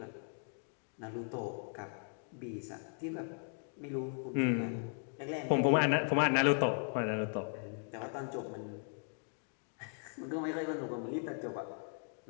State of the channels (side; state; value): right; silent; 53 dB below the other